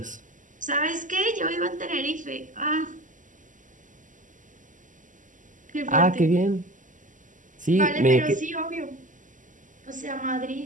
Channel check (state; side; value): late; left; 0.37 ms